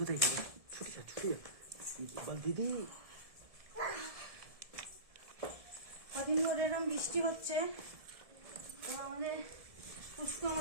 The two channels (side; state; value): left; late; 1.7 ms